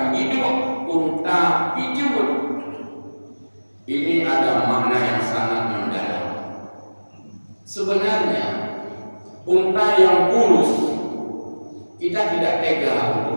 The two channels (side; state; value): both; inverted; correlation -1.00